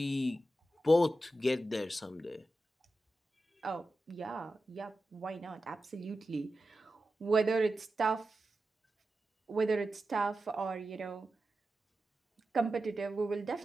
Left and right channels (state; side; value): normal; both; correlation 0.92